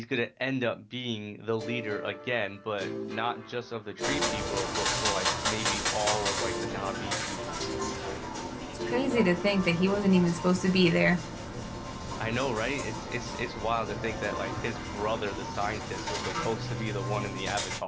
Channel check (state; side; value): identical; both; correlation 1.00